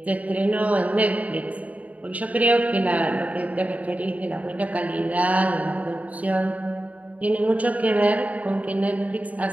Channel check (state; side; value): late; left; 0.070 ms